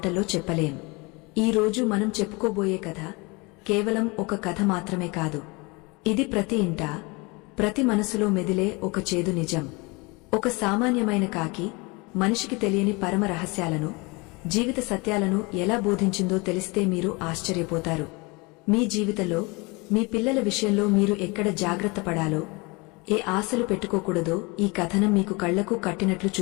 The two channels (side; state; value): right; quieter; 27.0 dB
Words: చెప్పలేం. ఈ రోజు మనం చెప్పుకోబోయే కథ కేవలం ఒక కథ మాత్రమే కాదు. ఇది ప్రతి ఇంటా ప్రతి మనసులో మెదిలే ఒక చేదు నిజం. ఒక సామాన్యమైన కాకి మనిషికి తెలియని పరమ రహస్యాలను, జీవిత సత్యాలను ఎలా బోధించిందో తెలిస్తే మీరు ఆశ్చర్యపోతారు. మీ జీవితంలో మీ పిల్లల విషయంలో మీరు ఎక్కడ జాగ్రత్త పడాలో, ఏ ఆశలు పెట్టుకోకూడదో ఈ కథనం మీకు కళ్లకు కట్టినట్లు